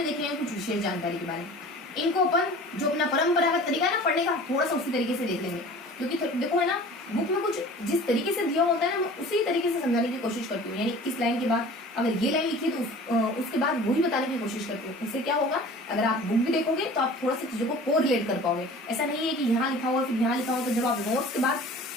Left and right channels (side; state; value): both; normal; correlation 0.43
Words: देखेंगे कुछ विशेष जानकारी के बारे में। इनको अपन जो अपना परंपरागत तरीका है ना पढ़ने का, थोड़ा सा उसी तरीके से देख लेंगे। क्योंकि देखो है ना, बुक में कुछ जिस तरीके से दिया होता है ना, मैं उसी तरीके से समझाने की कोशिश करती हूँ। यानी इस लाइन के बाद अगर ये लाइन लिखी है तो उसके बाद वही बताने की कोशिश करती हूँ। इससे क्या होगा, अगर आप बुक भी देखोगे तो आप थोड़ा सा चीजों को कोरिलेट कर पाओगे। ऐसा नहीं है कि यहाँ लिखा हुआ फिर यहाँ लिखा हुआ, तो जब आप नोट्स के बाद